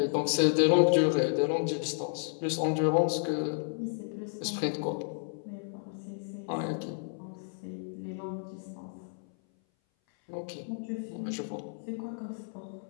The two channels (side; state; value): right; silent; 57 dB below the other